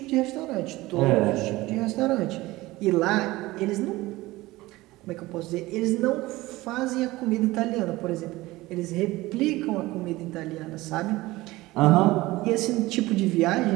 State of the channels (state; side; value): quieter; left; 19.1 dB